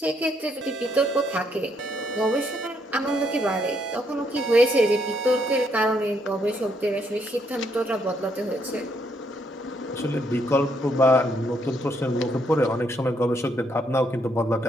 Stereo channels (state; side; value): normal; both; correlation 0.73